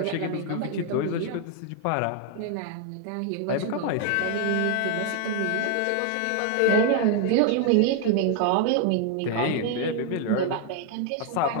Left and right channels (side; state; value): both; different; correlation 0.00